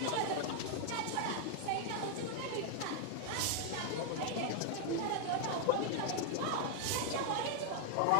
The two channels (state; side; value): different; both; correlation 0.00